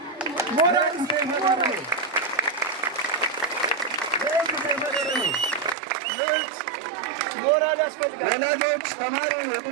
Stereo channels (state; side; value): drops out; left; at 5.8 s